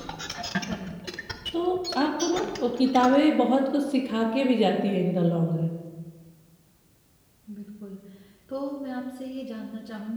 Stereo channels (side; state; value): both; identical; correlation 1.00